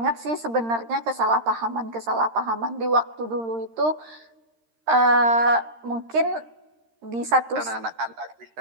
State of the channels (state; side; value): late; left; 13 ms